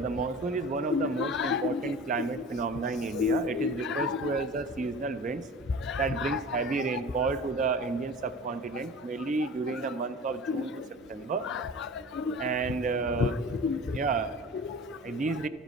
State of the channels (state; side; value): normal; both; correlation 0.38